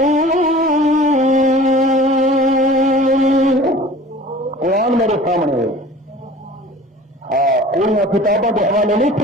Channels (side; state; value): both; normal; correlation 0.44